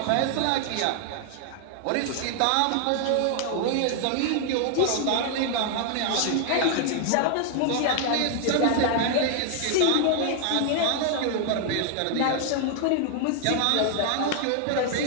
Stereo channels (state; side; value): different; both; correlation 0.00